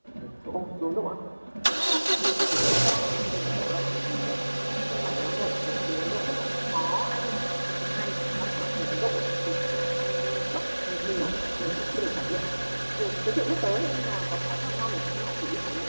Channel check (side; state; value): both; inverted; correlation -1.00